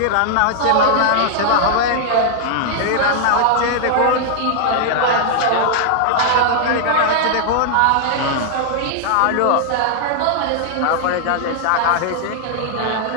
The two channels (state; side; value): different; both; correlation -0.01